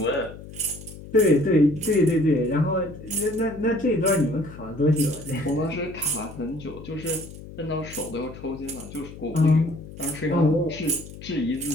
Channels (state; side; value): noise; left; hum, 15 dB below the sound